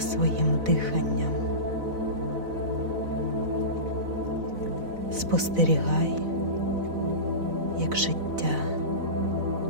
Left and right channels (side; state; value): left; late; 4.0 ms